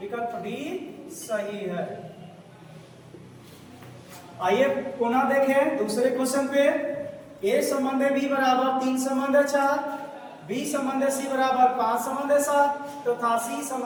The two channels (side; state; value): both; identical; correlation 1.00